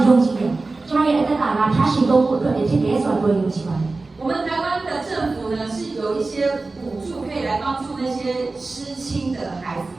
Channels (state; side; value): quieter; left; 3.5 dB